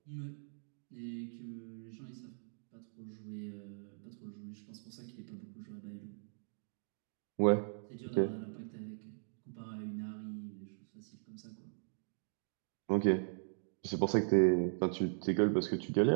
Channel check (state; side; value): silent; left; digital silence